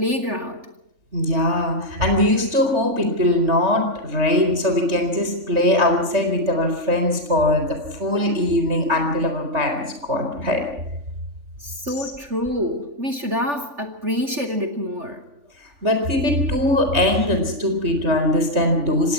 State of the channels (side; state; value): left; late; 3.5 ms